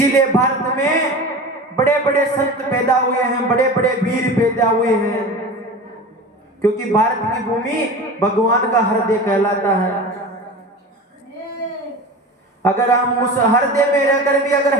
भारत में बड़े बड़े संत पैदा हुए हैं, बड़े बड़े वीर पैदा हुए हैं, क्योंकि भारत की भूमि भगवान का हृदय कहलाता है। अगर हम उस हृदय में रहकर भी अगर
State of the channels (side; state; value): both; normal; correlation 0.32